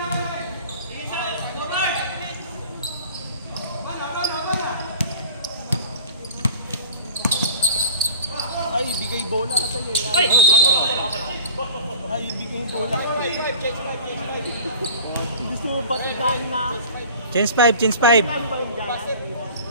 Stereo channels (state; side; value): inverted; both; correlation -0.42